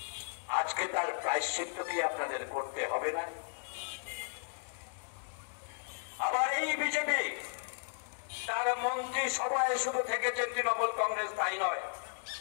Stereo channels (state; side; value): silent; right; digital silence